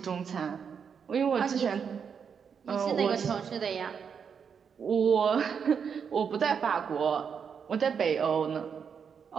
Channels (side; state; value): left; quieter; 6.8 dB